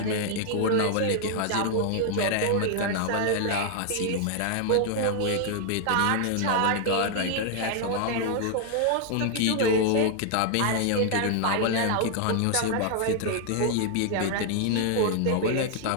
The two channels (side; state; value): both; different; correlation 0.00